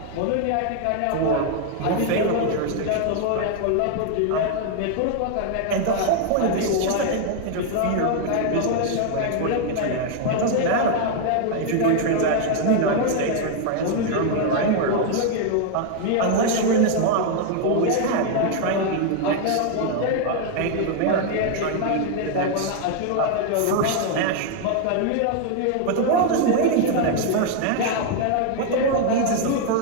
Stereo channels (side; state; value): both; different; correlation 0.00